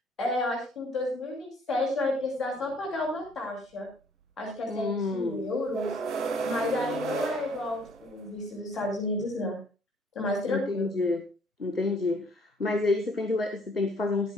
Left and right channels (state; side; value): normal; both; correlation 0.60